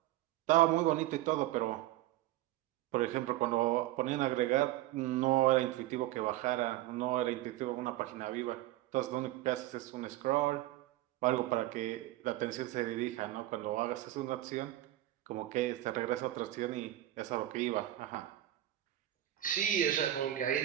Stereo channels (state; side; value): quieter; left; 14.8 dB